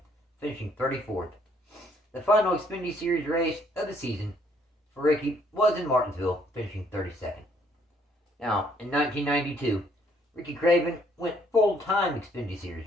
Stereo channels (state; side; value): normal; both; correlation 0.66